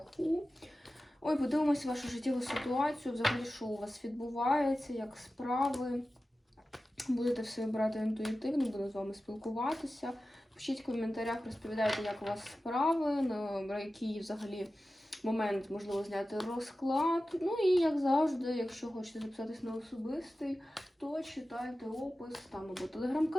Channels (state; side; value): normal; both; correlation 0.94